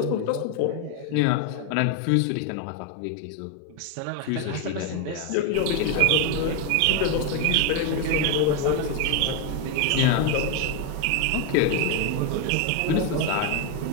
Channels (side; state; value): both; different; correlation 0.01